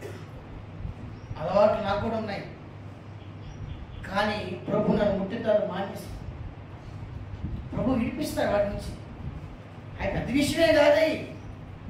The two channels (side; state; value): both; identical; correlation 1.00